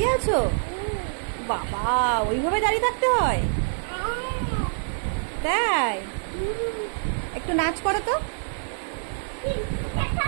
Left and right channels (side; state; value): left; silent; 61 dB below the other